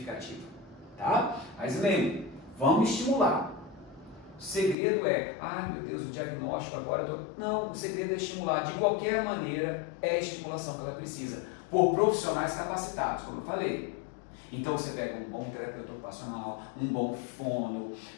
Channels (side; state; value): right; drops out; at 4.8 s